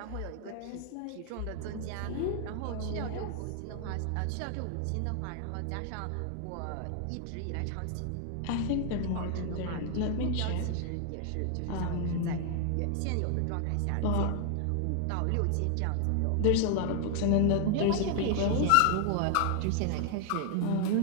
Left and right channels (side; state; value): both; different; correlation 0.00